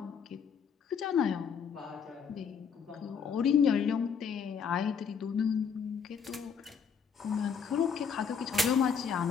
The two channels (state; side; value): quieter; right; 6.5 dB